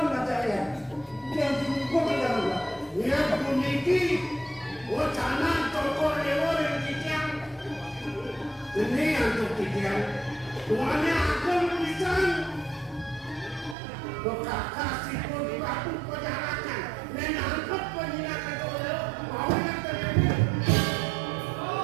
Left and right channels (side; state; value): left; drops out; at 13.8 s